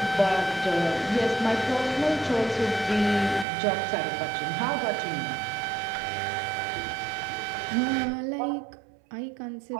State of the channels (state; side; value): drops out; left; at 3.5 s